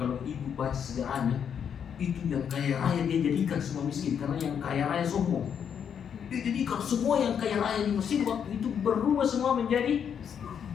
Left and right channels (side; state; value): right; quieter; 7.9 dB